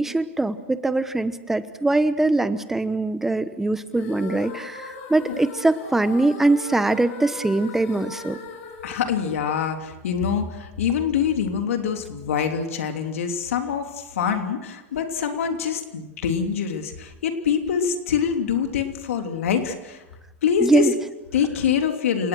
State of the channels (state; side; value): normal; both; correlation 0.40